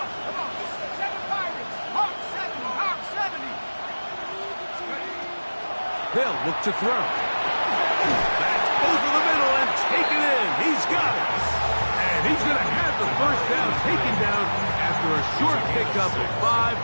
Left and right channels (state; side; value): inverted; both; correlation -1.00